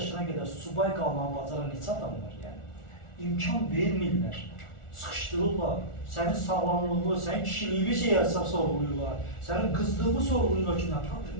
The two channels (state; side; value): late; right; 1.4 ms